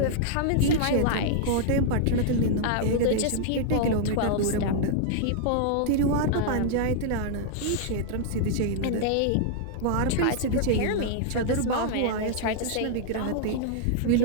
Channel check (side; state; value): both; different; correlation -0.01